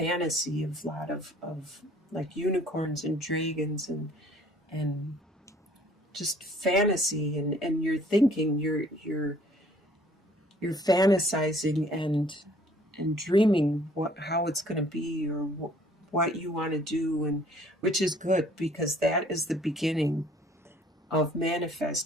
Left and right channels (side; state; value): both; normal; correlation 0.57